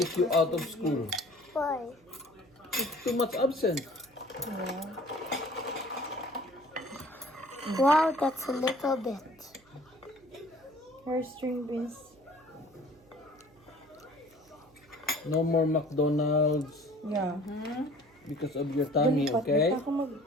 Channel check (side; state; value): right; noise; hum, 30 dB below the sound